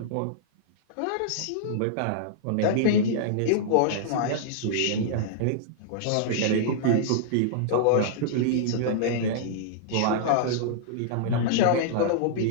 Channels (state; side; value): different; both; correlation -0.01